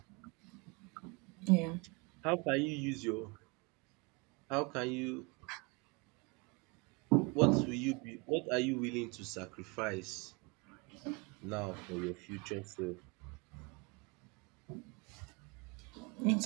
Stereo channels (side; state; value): left; quieter; 28.3 dB